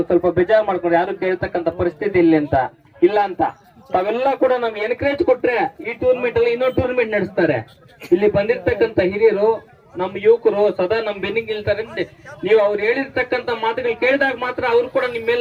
ಸ್ವಲ್ಪ ಬೇಜಾರು ಮಾಡ್ಕೊಂಡು ಯಾರು ಕೇಳ್ತಕ್ಕಂಥ ಪರಿಸ್ಥಿತಿ ಇಲ್ಲ ಅಂತ ತಾವೆಲ್ಲ ಕೂಡ ನಮ್ಗೆ ಎನ್ಕರೇಜ್ ಕೊಟ್ರೆ ಈ ಟೂರ್ನಿಮೆಂಟ್ ಅಲ್ಲಿ ಇನ್ನೊಂದು ಟೂರ್ನಿಮೆಂಟ್ ನಡೆಸ್ತಾರೆ. ಇಲ್ಲಿ ಬಂದಿರ್ತಕ್ಕಂಥ ಹಿರಿಯರು ನಮ್ಮ ಯುವಕರು ಸದಾ ನಮ್ ಬೆನ್ನಿಗೆ ನಿಲ್ತಾರೆ. ನೀವು ಅವ್ರು ಹೇಳಿರ್ತಕ್ಕಂಥ ಮಾತುಗಳು ಕೇಳಿದಾಗ ಮಾತ್ರ ಅವ್ರು ಕೂಡ ನಿಮ್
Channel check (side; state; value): both; identical; correlation 1.00